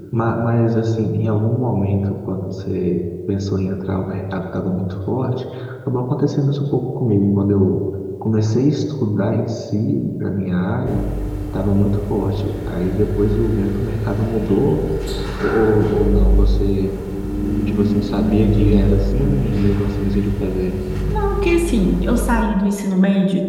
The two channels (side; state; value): both; identical; correlation 1.00